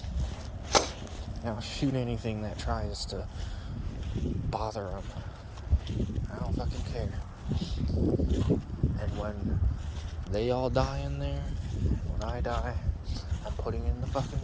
I'll shoot anything that tries to bother him. I don't fucking care. And when they all die in there, when I die, I'm putting in the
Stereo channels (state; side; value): identical; both; correlation 1.00